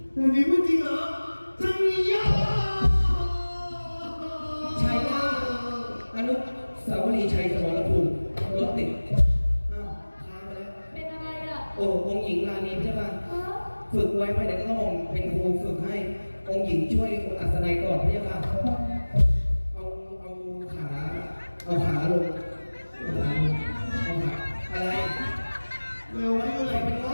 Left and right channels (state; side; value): inverted; both; correlation -1.00